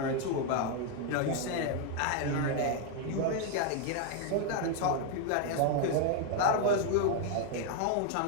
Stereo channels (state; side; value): different; both; correlation 0.00